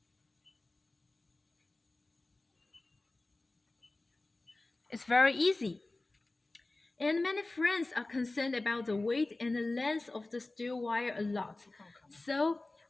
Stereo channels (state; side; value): quieter; right; 3.0 dB